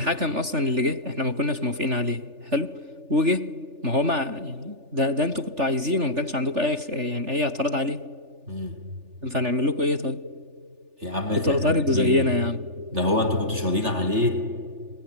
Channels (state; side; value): late; left; 3.4 ms